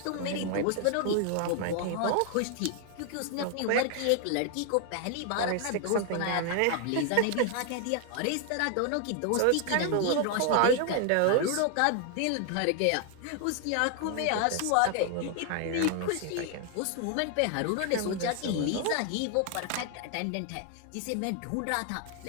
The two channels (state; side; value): different; both; correlation 0.00